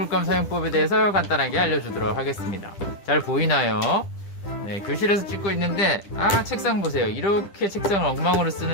사용법에 대해서 간단하게 알려주도록 하겠습니다. 잘 보이나요? 네, 교실에서 찍고 있는데 책상 보세요. 이렇게 책상을 엉망으로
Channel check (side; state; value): right; late; 10 ms